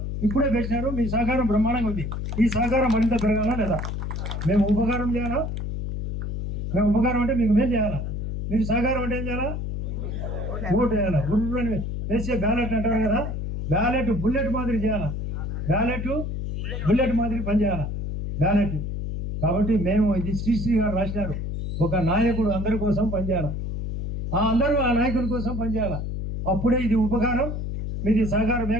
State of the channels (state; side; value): noise; left; hum, 4 dB below the sound